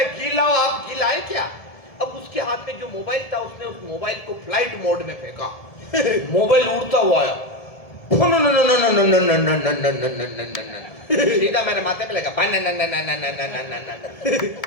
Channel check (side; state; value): right; late; 1.7 ms